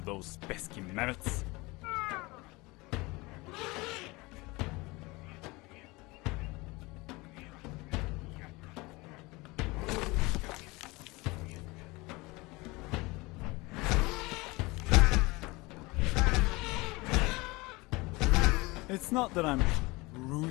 those pesky mammoths. It's not that I'm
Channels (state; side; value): quieter; right; 23.5 dB